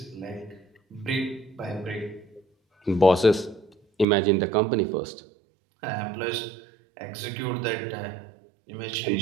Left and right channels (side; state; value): left; drops out; at 4.0 s